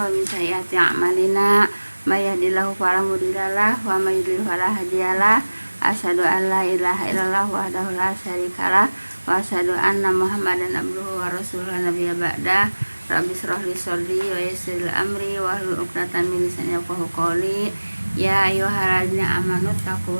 wa min sayyiati a'malina. May yahdihillahu fala mudhillalah wa may yudhlil fala hadiyalah. Asyhadu an la ilaha illallah wahdahu la syarikalah wa asyhadu anna Muhammadan abduhu wa rasuluhu nabiyya ba'da. Rabbi shrah li sadri wa yassir li amri wa hlul 'uqdatam min lisani yafqahu qawli. Ya ayyuhalladzina amanu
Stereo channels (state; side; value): inverted; both; correlation -1.00